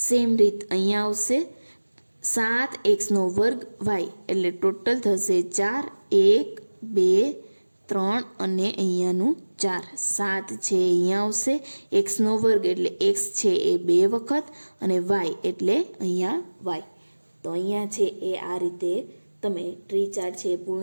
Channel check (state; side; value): inverted; both; correlation -1.00